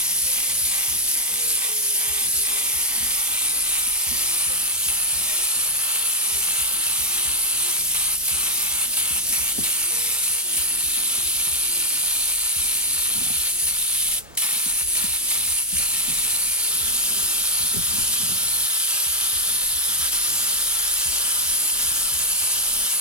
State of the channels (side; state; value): both; normal; correlation 0.00